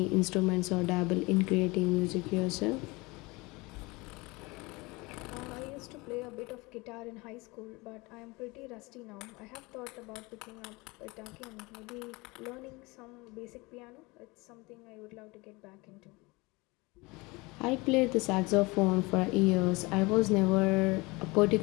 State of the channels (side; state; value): right; quieter; 24.4 dB